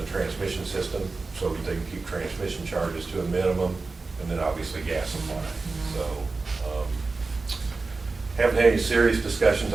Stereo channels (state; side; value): quieter; left; 3.8 dB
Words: the transmission system so that they can keep transmission charges to a minimum, and then obviously gas supply. So haven't had any serious discussions